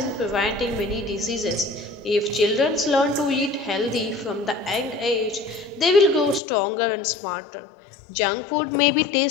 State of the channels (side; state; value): right; drops out; at 6.4 s